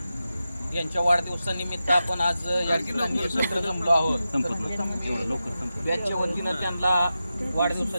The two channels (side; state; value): both; inverted; correlation -0.91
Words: यांच्या वाढदिवसानिमित्त आपण आज या ठिकाणी एकत्र जमलो आहोत. बॅचच्या वतीनं त्यांना